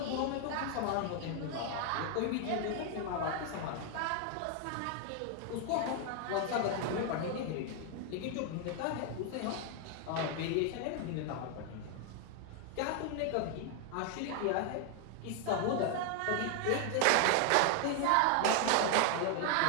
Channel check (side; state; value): both; different; correlation 0.00